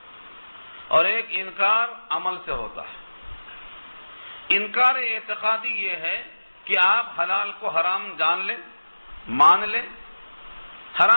اور ایک انکار عمل سے ہوتا ہے. انکار اعتقادی یہ ہے کہ آپ حلال کو حرام جان لیں، مان لیں،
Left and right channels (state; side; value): inverted; both; correlation -1.00